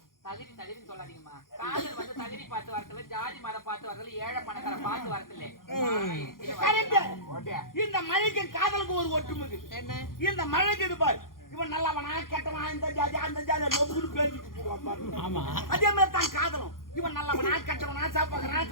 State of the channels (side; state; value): right; late; 0.91 ms